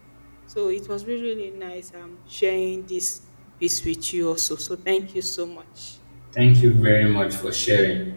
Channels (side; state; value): both; inverted; correlation -1.00